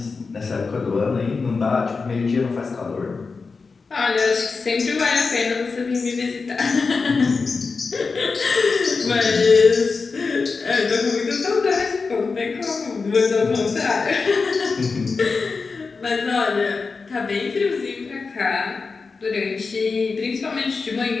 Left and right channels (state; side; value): quieter; right; 4.5 dB